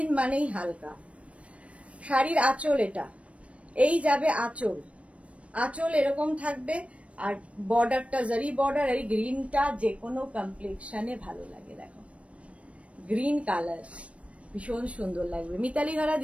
মানেই হালকা। শাড়ির আঁচল এটা, এই যাবে আঁচল, আঁচল এরকম থাকবে। আর বর্ডারটা জারি বর্ডার, এই গ্রিনটা যে কোনো কমপ্লেক্সনে ভালো লাগে, দেখো গ্রিন কালার ভীষণ সুন্দর লাগবে। মিতালি ঘরা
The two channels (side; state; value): left; late; 0.063 ms